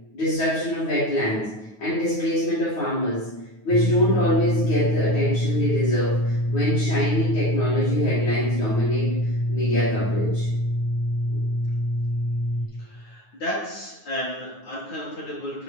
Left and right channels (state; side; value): late; right; 9.4 ms